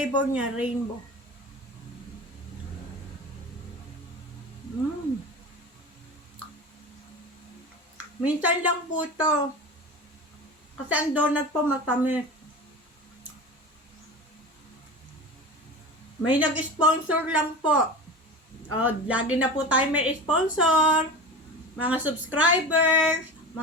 niya, rainbow. Minsan lang po ito. Kasi ang donut po matamis. May nag-sponsor lang po. Lagi na po tayo may sponsor. Mga subscribers,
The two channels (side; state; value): both; normal; correlation 0.31